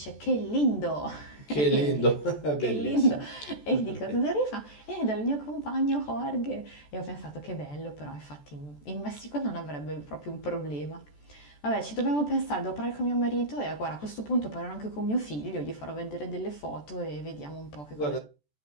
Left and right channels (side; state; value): right; late; 14 ms